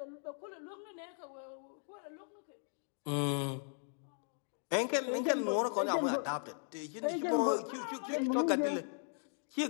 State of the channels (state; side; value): silent; right; 53 dB below the other